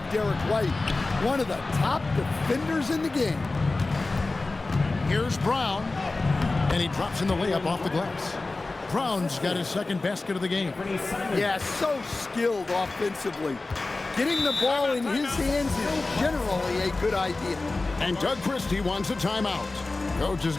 Derek White, one of the top defenders in the game. Here's Brown. And he drops in the layup off the glass. Brown's got his second basket of the game. Yeah, so skilled offensively. Getting the ball in his hands is generally a good idea. And Doug Christie wants a timeout. Coach is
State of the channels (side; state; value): right; quieter; 3.3 dB